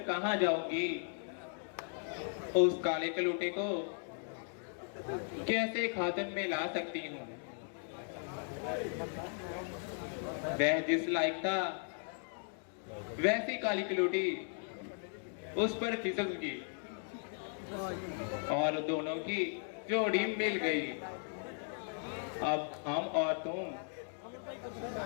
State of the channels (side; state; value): right; silent; 53 dB below the other